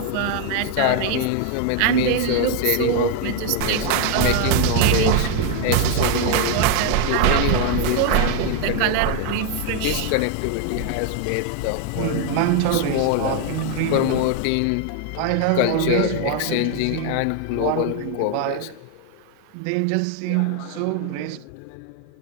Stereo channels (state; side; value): different; both; correlation 0.01